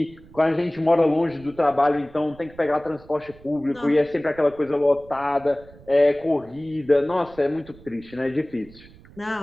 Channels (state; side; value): noise; right; rumble, 22 dB below the sound